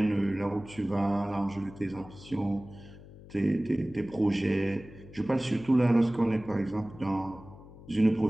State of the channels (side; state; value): left; noise; hum, 18 dB below the sound